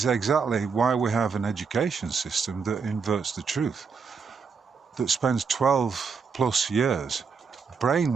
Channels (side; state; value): left; quieter; 5.6 dB